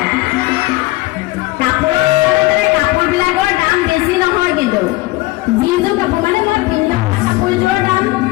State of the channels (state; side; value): quieter; right; 20.1 dB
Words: কাপোৰবিলাকৰ দাম বেছি নহয় কিন্তু যিযোৰ কাপোৰ মানে মই পিন্ধা কাপোৰযোৰৰ দাম